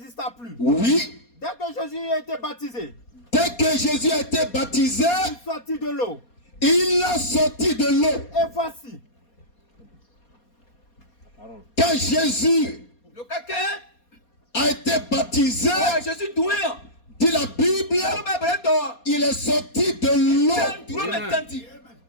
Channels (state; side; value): late; right; 4.2 ms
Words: plus. Oui. Dès que Jésus a été baptisé. Dès que Jésus a été baptisé. Il sortit de l'eau. Il a sorti de l'eau. Et voici. Quand Jésus a été baptisé, dit la Bible, il est sorti de l'eau.